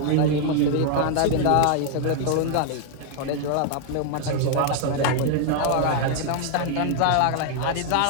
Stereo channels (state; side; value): different; both; correlation 0.00